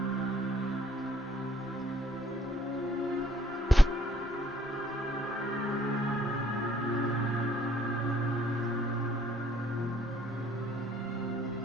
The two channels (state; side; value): normal; both; correlation 0.63